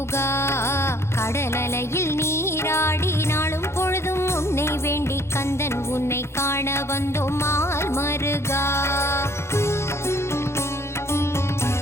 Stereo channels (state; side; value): late; right; 0.13 ms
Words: கடலலையில் நீராடி நாளும் பொழுதும் உன்னை வேண்டி கந்தன் உன்னை காண வந்தோம் மால் மருகா.